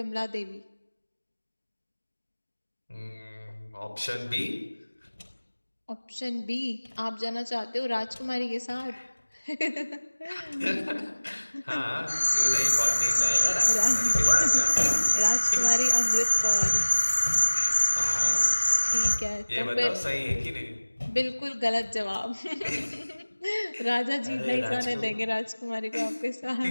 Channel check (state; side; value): inverted; both; correlation -1.00